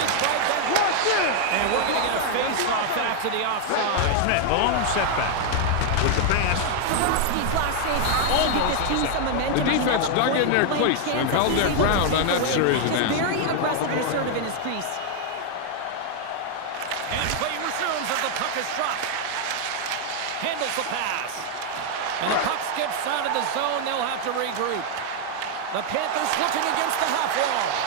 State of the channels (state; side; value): different; both; correlation 0.00